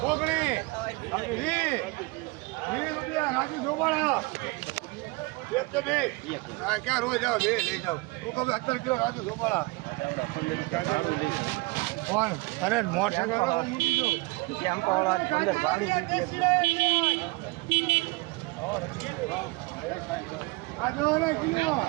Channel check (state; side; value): quieter; left; 25.1 dB